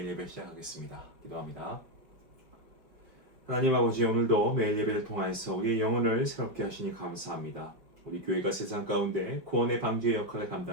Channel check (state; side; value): late; left; 5.4 ms